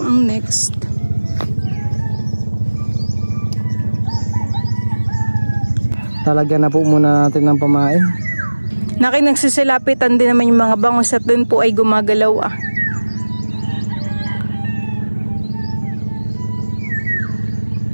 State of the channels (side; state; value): both; inverted; correlation -1.00